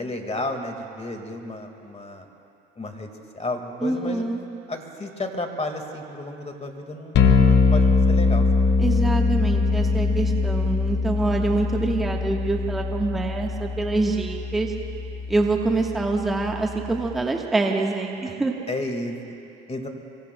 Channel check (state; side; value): normal; both; correlation 0.71